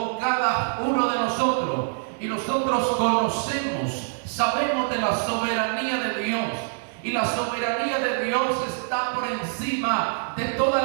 cada uno de nosotros. Y nosotros conocemos, sabemos de la soberanía de Dios. Y la soberanía de Dios está por encima de todas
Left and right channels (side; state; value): left; silent; digital silence